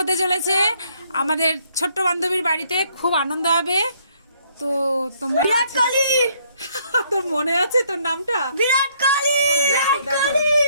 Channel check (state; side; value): inverted; both; correlation -0.67